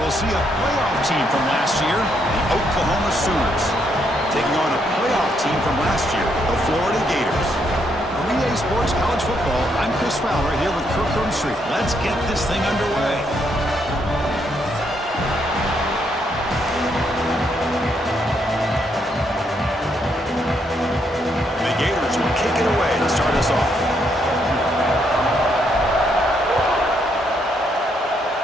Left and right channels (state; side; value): normal; both; correlation 0.75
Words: see a playoff team from last year, the Oklahoma Sooners, taking on a playoff team from last year, the Florida Gators. For EA Sports College Football, I'm Chris Fowler here with Kirk Herbstreit. Let's get this thing underway. The Gators will kick it away to start us off.